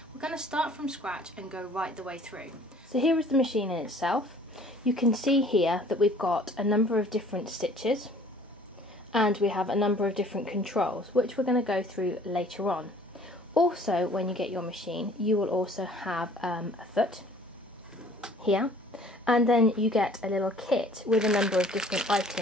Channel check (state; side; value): normal; both; correlation 0.53